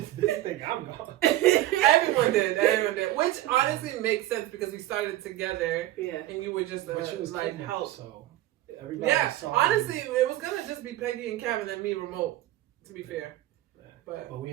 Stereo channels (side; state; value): left; quieter; 15.1 dB